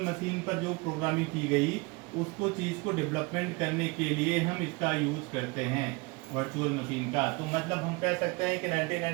मशीन पर जो प्रोग्रामिंग की गई उसको चीज़ को डेवलपमेंट करने के लिए हम इसका यूज़ करते हैं, वर्चुअल मशीन का। तो मतलब हम कह सकते हैं कि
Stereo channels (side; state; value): left; quieter; 26.6 dB